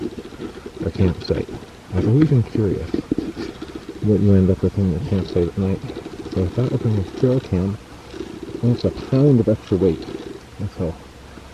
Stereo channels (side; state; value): both; identical; correlation 1.00